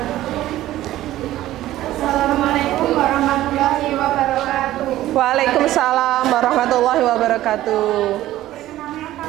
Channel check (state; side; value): quieter; left; 14.6 dB